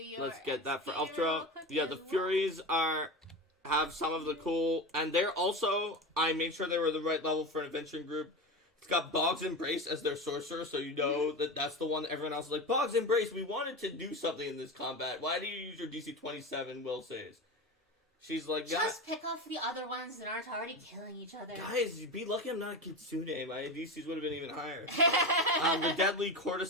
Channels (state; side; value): normal; both; correlation 0.23